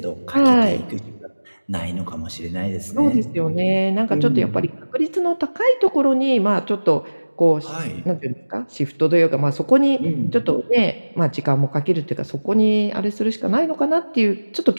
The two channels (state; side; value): inverted; both; correlation -1.00